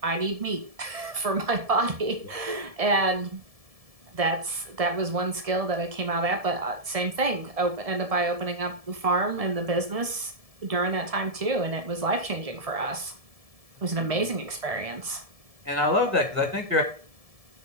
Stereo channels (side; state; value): left; late; 1.7 ms